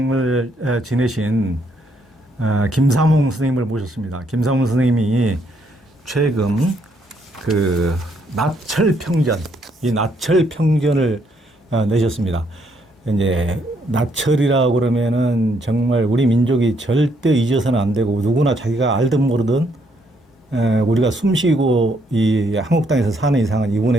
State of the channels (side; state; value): both; normal; correlation 0.72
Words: 지내신 김삼홍 선생님을 모셨습니다. 김삼홍 선생님이 최근 그 나철평전, 이 나철평전을 내셨습니다. 이제 나철이라고 그러면은 정말 우리 민족이 절대 잊어서는 안 되고 누구나 자기가 알든 모르든 우리가 숨쉬고 이 한국 땅에서 사는 이상은